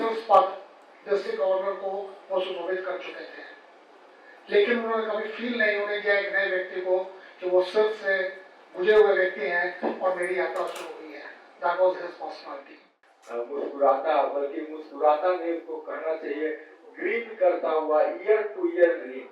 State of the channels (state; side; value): identical; both; correlation 1.00